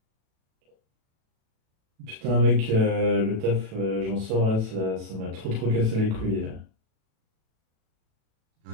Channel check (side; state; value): left; late; 36 ms